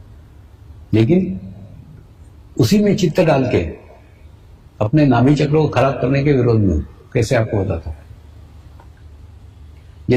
लेकिन उसी में चित्त डाल के अपने नाभि चक्र को खराब करने के विरोध में हूं। कैसे आपको बताता हूं।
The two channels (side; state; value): both; identical; correlation 1.00